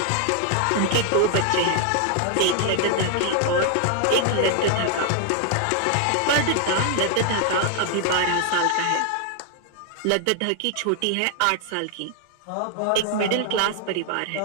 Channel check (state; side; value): different; both; correlation 0.00